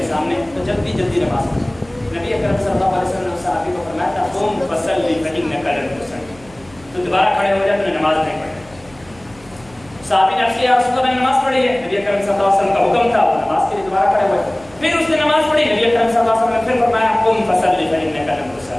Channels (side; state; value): right; noise; hum, 24 dB below the sound